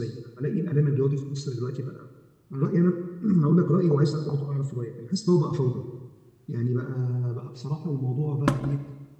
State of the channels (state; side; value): identical; both; correlation 1.00